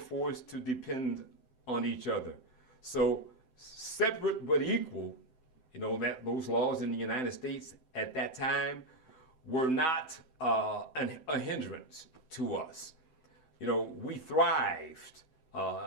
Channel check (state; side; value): late; right; 7.8 ms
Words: to depend on each other. So separate but equal, you know, that those laws in the United States at that time were not a hindrance to us. You know, we thrived